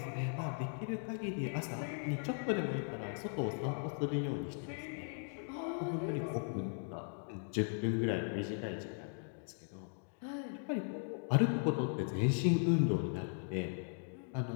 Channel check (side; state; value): right; silent; 52 dB below the other